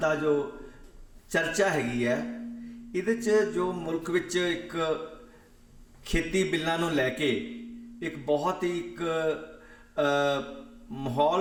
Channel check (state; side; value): identical; both; correlation 1.00